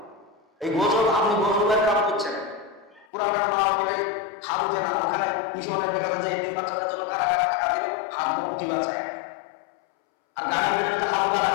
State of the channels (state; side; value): drops out; right; at 3.1 s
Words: এই গজব আপনি গজবের কাম করছেন। পুরাটার মা মিলে হাত উঠে না, ওখানে মিশনে দেখা যায় যে 3 বাচ্চাদের জন্য কারা কারা টাকা দেবে, হাত উঠি বাঁচায়। আর এখানে তো হালকা